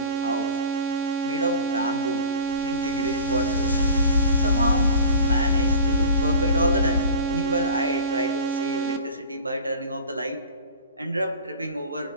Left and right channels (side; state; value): both; inverted; correlation -0.37